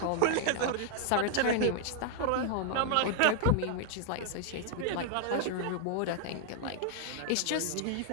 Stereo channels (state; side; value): different; both; correlation 0.00